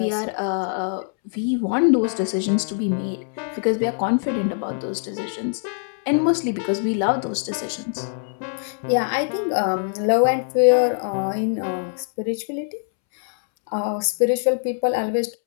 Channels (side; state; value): right; silent; 63 dB below the other